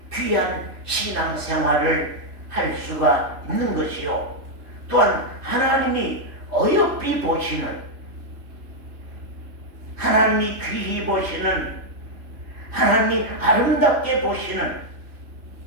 귀한 신앙생활을 할 수가 있는 것이요. 또한 하나님이 어여삐 보시는, 하나님이 귀히 보시는, 하나님이 아름답게 보시는,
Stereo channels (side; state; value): left; late; 3.5 ms